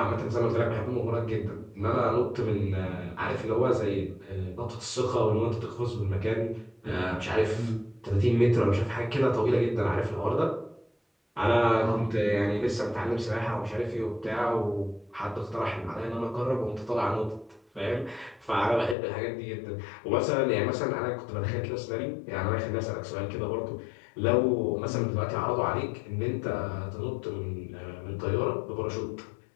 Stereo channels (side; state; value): right; drops out; at 18.9 s